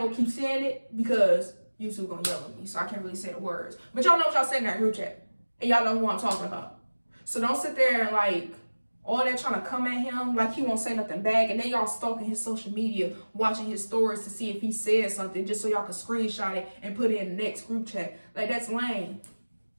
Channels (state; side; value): inverted; both; correlation -1.00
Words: to keep saying it because YouTube gonna yell at me, so I can't really say the words. But y'all know what y'all said in that group chat. And y'all know who I'm talking about. So don't sit there and like, all that trying to come at him like he won't say nothing back. And then y'all stalking his social media, watching his stories to see if he said something just so y'all can screenshot it and put it in the next group chat. Like, that's lame.